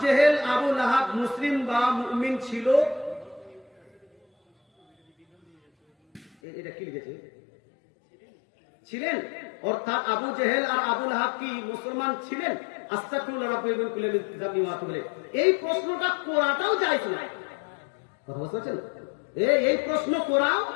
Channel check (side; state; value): right; drops out; at 6.3 s